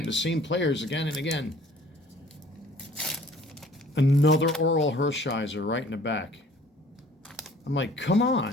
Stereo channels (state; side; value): normal; both; correlation 0.53